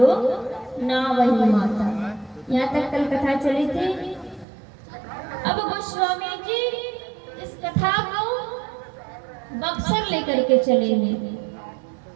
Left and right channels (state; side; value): drops out; left; at 4.5 s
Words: ना वही माता, यहाँ तक कल कथा चली थी। अब गोस्वामी जी इस कथा को बक्सर लेकर के चले हैं।